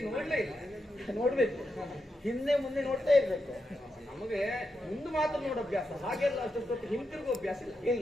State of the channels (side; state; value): both; normal; correlation 0.86